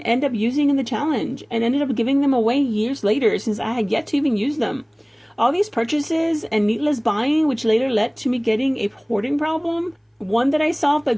end up using in the challenge and ended up giving them away years later since I had yet to even use them. All these purchases and needless buying, which later led to me getting a hoarding problem, one that I solved by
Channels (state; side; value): identical; both; correlation 1.00